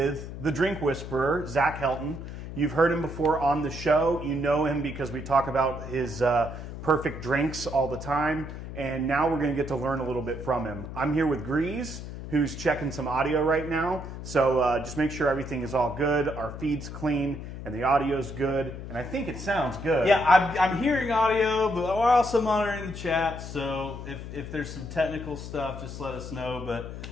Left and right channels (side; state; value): left; noise; hum, 9 dB below the sound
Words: the Drink Whisperer, Zach Helton. You've heard him before on the show. You know him because we talk about his perfect drinks all the time. And now we're going to get to learn a little bit from him. I'm here with Grease, who's checking some audio right now. So just make sure everything is all good. Our feed's clean and the audio's good. And I think it sounds good. Yeah, I'm hearing audio, but we're also monitoring the chat. So if there's some technical stuff, just let us know. But